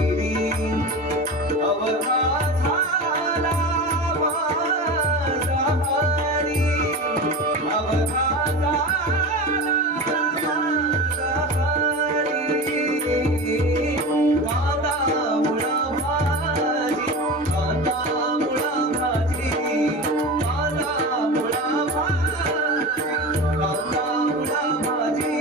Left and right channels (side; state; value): both; normal; correlation 0.28